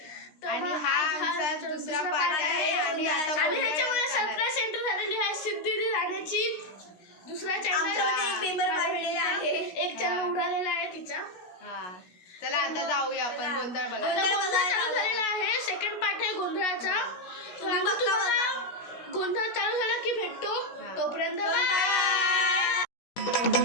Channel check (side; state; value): right; late; 16 ms